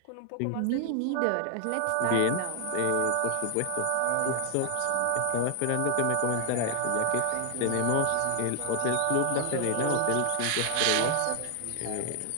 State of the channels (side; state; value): both; different; correlation 0.00